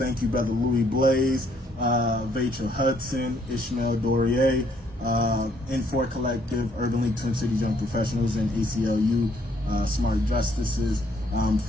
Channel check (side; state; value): both; normal; correlation 0.67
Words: you, Brother Louis Blaze, Vachel Hudson, Ishmael Dorier, N4 Collective, Urban League Twin Cities Young Professionals, and ACLU Smart Justices